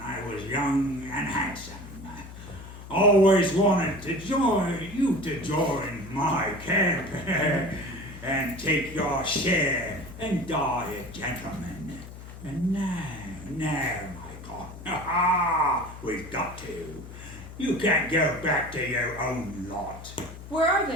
was young and handsome. Always wanted to join my camp and take your share and die a gentleman. And now, my God, we've got to. You can't go back to your own lot. Where are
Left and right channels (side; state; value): left; noise; hum, 14 dB below the sound